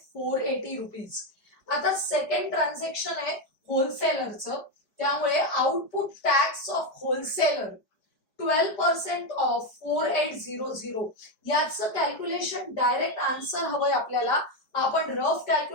480 रुपीज. आता सेकंड ट्रान्झॅक्शन आहे होलसेलरचं, त्यामुळे output tax of wholesaler 12% of 4800. याचं कॅल्क्युलेशन डायरेक्ट आन्सर हवंय आपल्याला. आपण रफ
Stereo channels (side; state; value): right; late; 5.0 ms